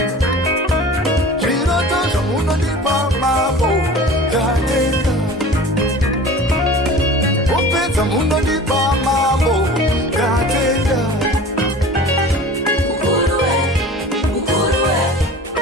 Chiroto munondipa mambo ndatenda. Upeta munondipa mambo ndatenda.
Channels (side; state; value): both; normal; correlation 0.40